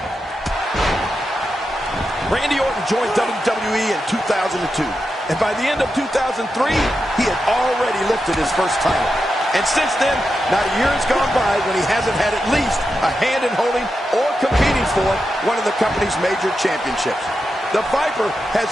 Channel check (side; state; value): both; normal; correlation 0.88